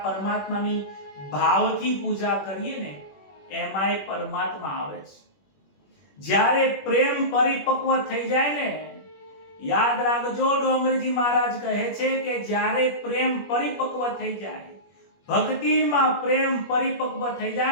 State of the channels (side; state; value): right; late; 21 ms